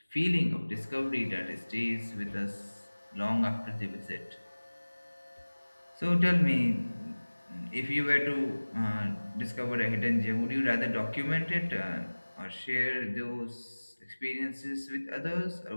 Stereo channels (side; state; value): both; inverted; correlation -1.00